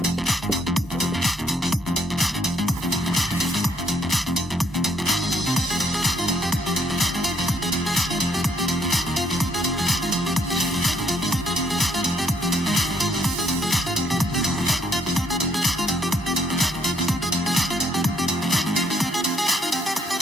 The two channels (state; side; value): normal; both; correlation 0.69